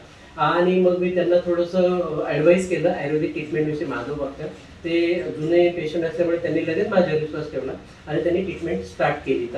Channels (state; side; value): identical; both; correlation 1.00